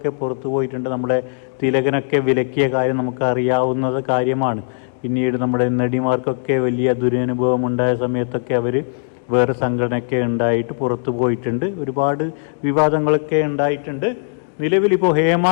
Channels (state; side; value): silent; right; digital silence